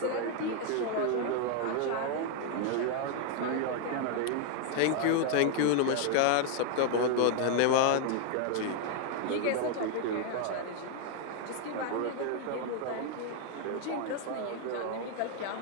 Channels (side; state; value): both; different; correlation 0.00